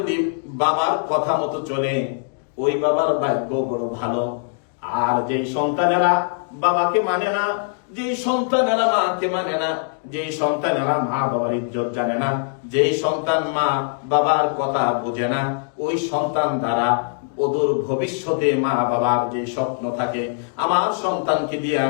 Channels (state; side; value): silent; right; digital silence